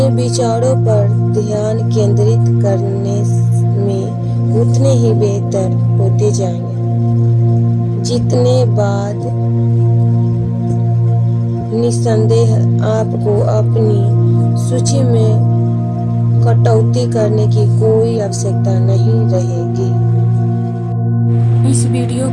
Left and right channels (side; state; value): both; identical; correlation 1.00